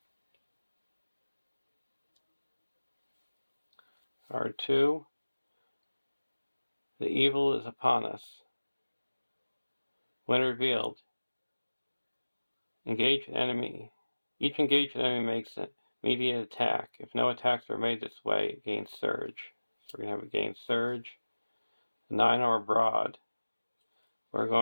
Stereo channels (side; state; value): both; inverted; correlation -1.00